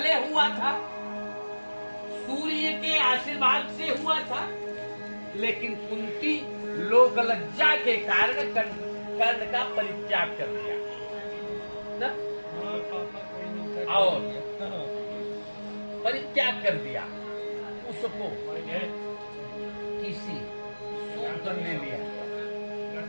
हुआ था, सूर्य के आशीर्वाद से हुआ था, लेकिन कुंती लोक लज्जा के कारण कर्ण का परित्याग कर दिया ना? और परित्याग कर दिया, उसको किसी सूत्र ने लिया,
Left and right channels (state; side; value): inverted; both; correlation -1.00